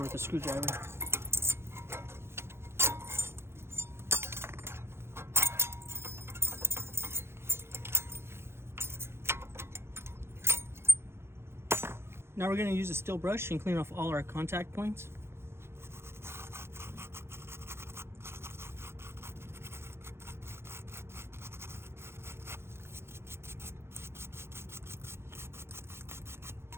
with a screwdriver. Now we're going to use a steel brush and clean off all our contact points.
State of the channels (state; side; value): late; left; 0.12 ms